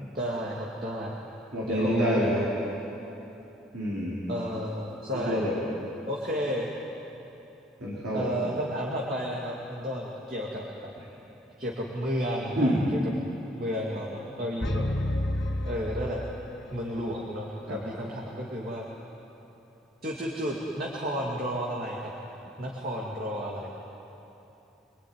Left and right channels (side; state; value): both; normal; correlation 0.58